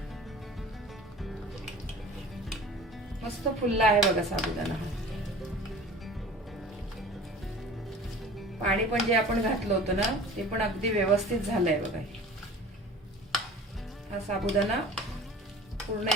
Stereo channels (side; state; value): both; normal; correlation 0.42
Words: मस्त फुलला आहे बघा साबुदाणा। पाणी पण जे आपण घातलं होतं ना ते पण अगदी व्यवस्थित झालंय बघा। हा साबुदाणा पूर्ण